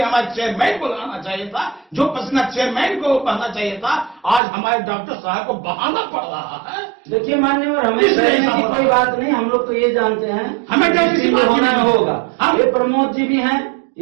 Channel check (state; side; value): drops out; left; at 4.4 s